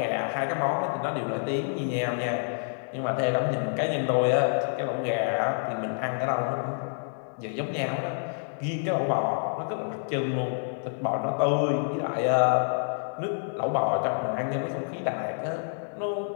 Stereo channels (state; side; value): silent; right; digital silence